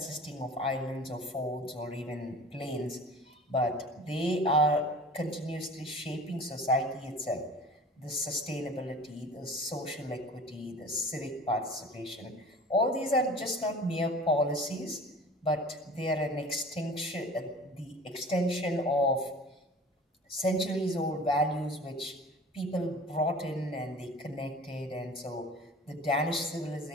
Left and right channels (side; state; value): both; normal; correlation 0.42